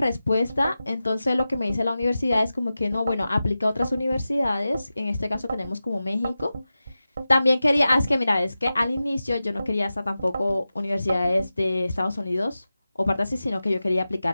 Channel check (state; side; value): inverted; both; correlation -0.94